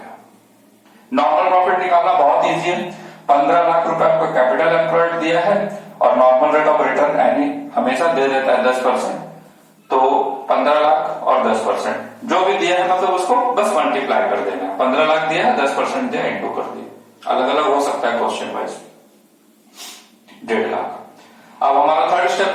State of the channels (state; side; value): identical; both; correlation 1.00